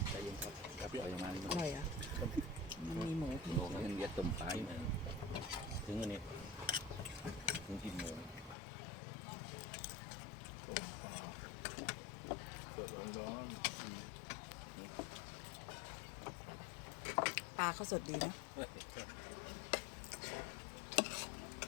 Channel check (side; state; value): right; drops out; at 8.6 s